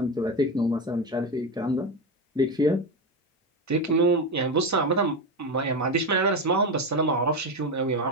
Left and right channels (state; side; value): normal; both; correlation 0.15